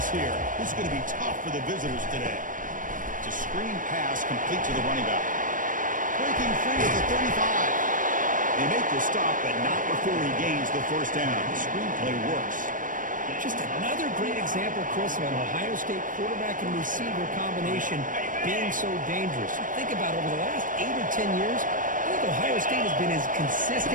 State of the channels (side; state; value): left; late; 0.38 ms